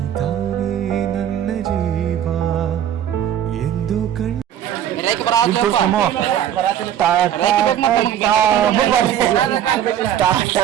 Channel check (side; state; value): left; quieter; 10.4 dB